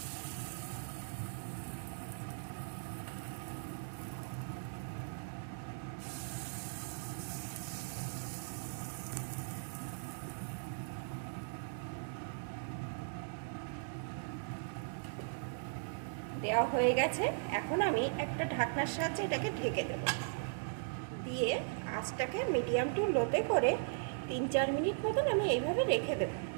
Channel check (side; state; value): left; silent; digital silence